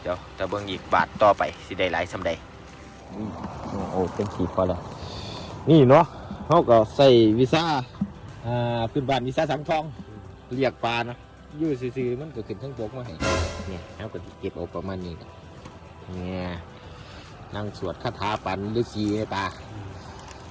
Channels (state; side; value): identical; both; correlation 1.00